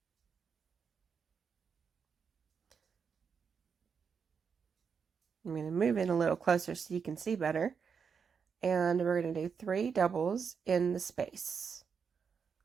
I'm going to move in a little closer so you can see better. and we're going to do 3 doubles in the space.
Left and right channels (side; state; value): left; quieter; 6.3 dB